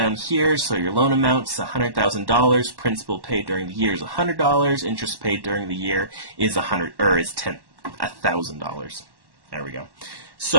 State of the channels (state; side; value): late; left; 1.1 ms